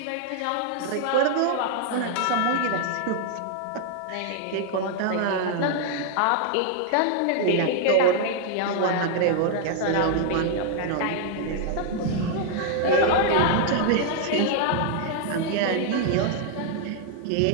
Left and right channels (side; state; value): both; different; correlation 0.00